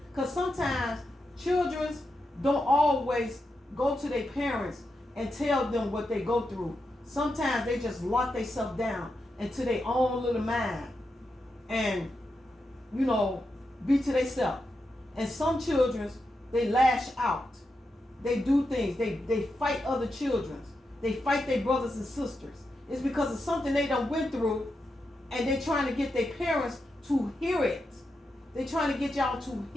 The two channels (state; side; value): normal; both; correlation 0.87